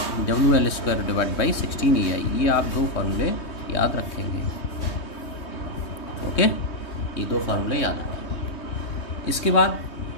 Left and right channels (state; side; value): late; right; 3.2 ms